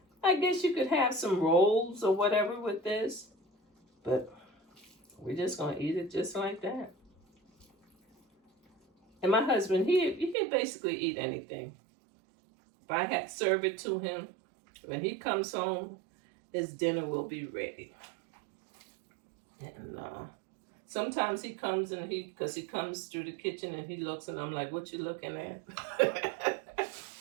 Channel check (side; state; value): left; drops out; at 10.4 s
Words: I guess you could have some rolls or whatever with this. But we're just going to eat it just like that. And my husband, he can basically eat anything. If I had to serve it to him, when he comes home, his dinner will be ready. And sometimes he comes and because he comes through the kitchen and he looks and I'm like, what you looking at?